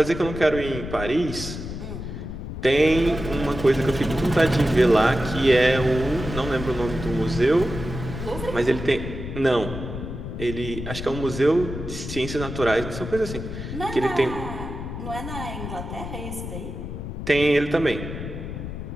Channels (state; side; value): noise; left; rumble, 7 dB below the sound